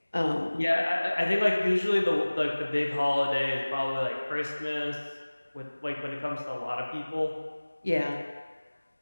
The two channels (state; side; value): inverted; both; correlation -1.00